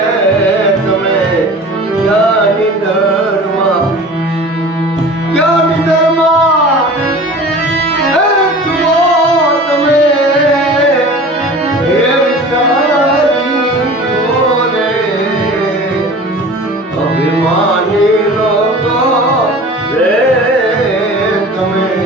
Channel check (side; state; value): both; normal; correlation 0.40